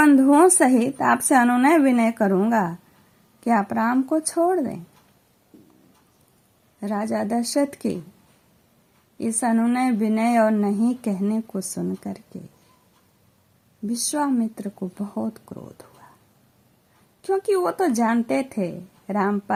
सहित आपसे अनुनय विनय करूंगा कि आप राम को छोड़ दें। राजा दशरथ के इस अनुनय विनय और नहीं कहने को सुन करके विश्वामित्र को बहुत क्रोध हुआ, क्योंकि वो तो जानते थे राम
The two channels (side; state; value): both; identical; correlation 1.00